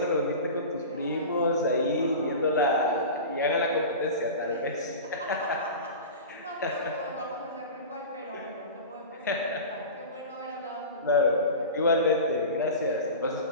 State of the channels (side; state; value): both; inverted; correlation -0.31